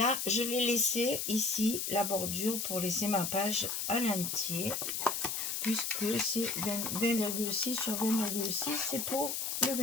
je l'ai laissé ici, la bordure, pour laisser ma page à l'entier. Puisque c'est 20,6 sur 20,6, c'est pour le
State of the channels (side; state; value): left; noise; hiss, 2 dB below the sound